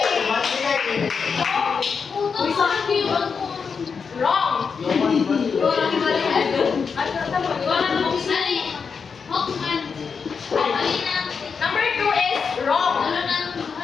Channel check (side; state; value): right; quieter; 5.7 dB